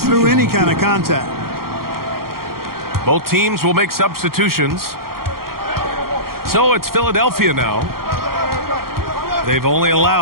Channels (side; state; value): left; late; 0.93 ms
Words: any kind of contact. Both teams will make substitutions. So it's Philadelphia now. They've only